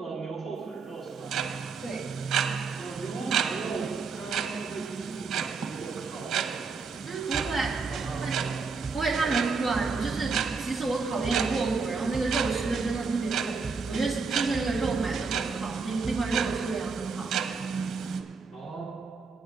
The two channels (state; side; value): quieter; left; 4.7 dB